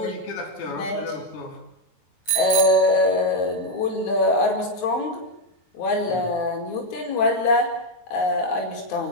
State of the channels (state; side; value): late; right; 9.5 ms